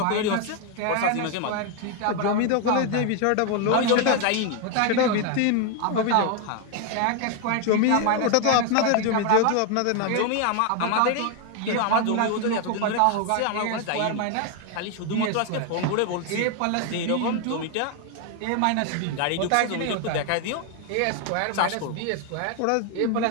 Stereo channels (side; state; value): both; different; correlation 0.01